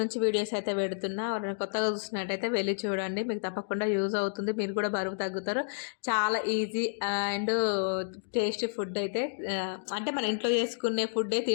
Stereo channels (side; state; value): right; silent; digital silence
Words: videos అయితే పెడుతున్నా. ఎవరైనా కొత్తగా చూసినట్టయితే వెళ్ళి చూడండి, మీకు తప్పకుండా యూజ్ అవుతుంది. మీరు కూడా బరువు తగ్గుతారు. చాలా ఈజీ అండ్ టేస్టీ ఫుడ్ అయితే, అంటే మన ఇంట్లో చేసుకునే ఫుడ్డే